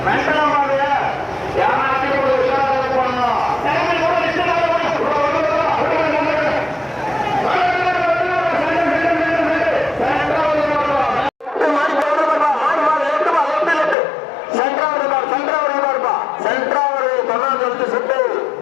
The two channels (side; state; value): right; drops out; at 14.0 s